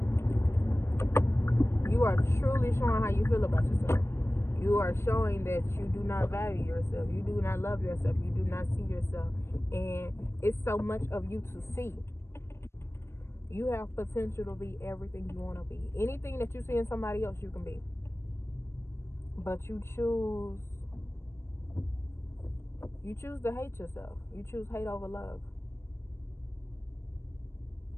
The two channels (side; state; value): right; late; 0.12 ms